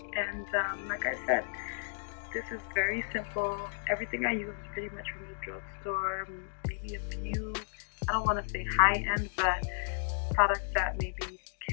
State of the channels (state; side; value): silent; right; digital silence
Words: And like I said, this is very simple. Everything I use is pretty much from the drugstore. Maybe a few, I don't want to say high-end, but products that maybe you